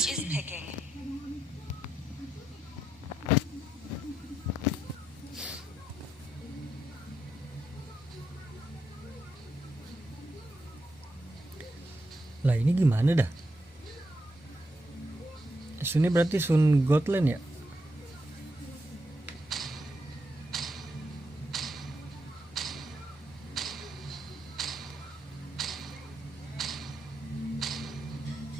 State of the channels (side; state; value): both; normal; correlation 0.82